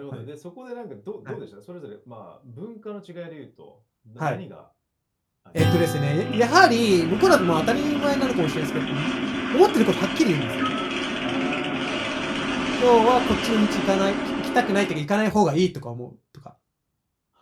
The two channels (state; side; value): identical; both; correlation 1.00